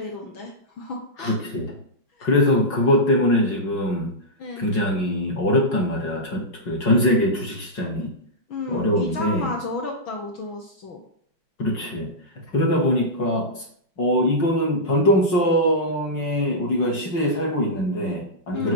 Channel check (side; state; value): right; late; 5.5 ms